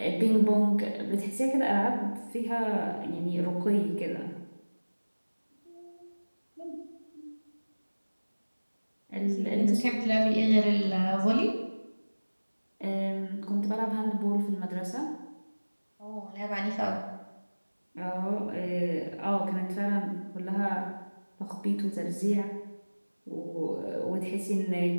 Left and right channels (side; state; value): both; inverted; correlation -1.00